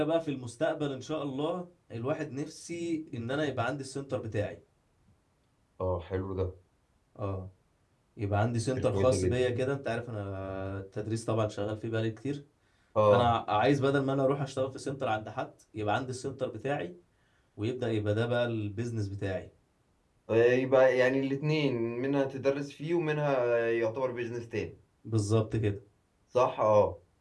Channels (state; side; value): identical; both; correlation 1.00